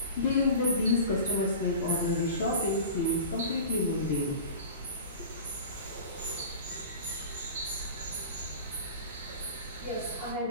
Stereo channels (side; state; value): both; inverted; correlation -0.37